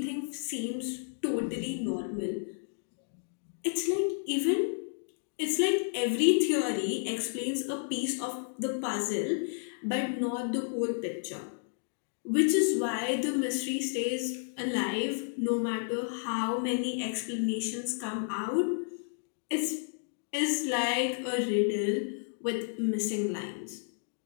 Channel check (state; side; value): silent; right; digital silence